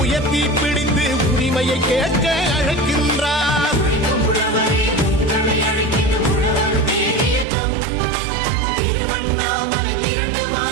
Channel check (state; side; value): drops out; left; at 7.5 s